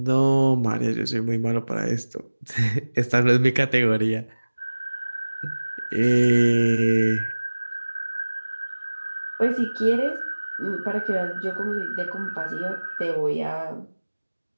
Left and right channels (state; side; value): inverted; both; correlation -1.00